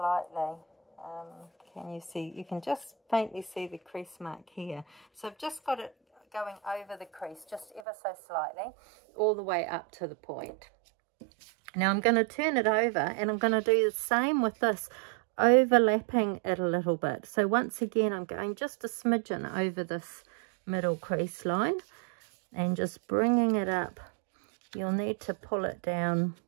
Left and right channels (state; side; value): drops out; left; at 7.8 s